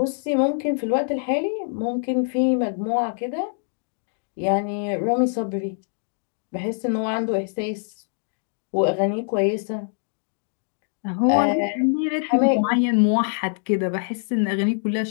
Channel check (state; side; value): silent; right; digital silence